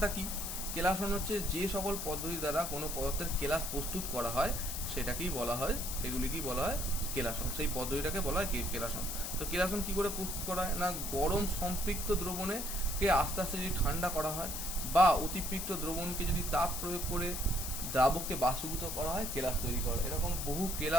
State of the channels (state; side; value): noise; left; hiss, 4 dB below the sound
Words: কি? কেলাসন হচ্ছে যে সকল পদ্ধতি দ্বারা কোনো পদার্থের কেলাস প্রস্তুত করা হয়, সেটাকেই বলা হয়, সেগুলিকেই বলা হয় কেলাসন। সেই পদ্ধতিটাকে বলা হয় কেলাসন। তো কেলাসন কি করে প্রস্তুত করা হয় না, গরম সম্পৃক্ত দ্রবণকে আস্তে আস্তে যদি ঠান্ডা করা হয়, বা অতিপৃক্ত দ্রবণকে যদি তাপ প্রয়োগ করে দ্রাবককে বাষ্পীভূত করা হয়, কেলাস তৈরি করে। এরকম বহু